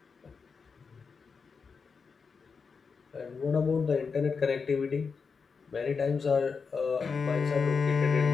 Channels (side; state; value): right; quieter; 5.3 dB